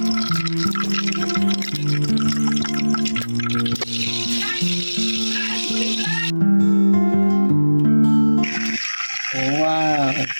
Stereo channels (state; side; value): inverted; both; correlation -1.00